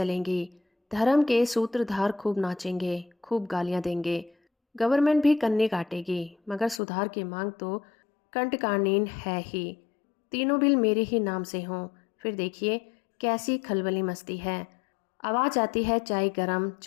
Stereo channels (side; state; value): right; drops out; at 6.8 s